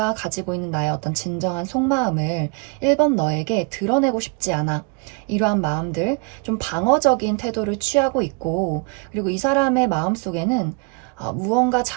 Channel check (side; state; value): left; quieter; 31.5 dB